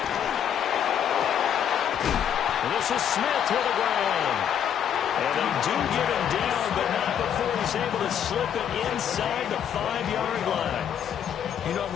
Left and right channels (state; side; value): quieter; right; 9.0 dB